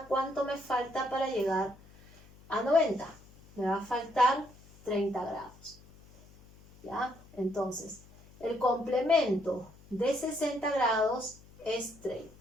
¿cuánto me falta para llegar a 90? Me va a faltar 30 grados. ¿Ya? Entonces, el complemento de 60 grados es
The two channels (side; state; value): left; noise; hum, 24 dB below the sound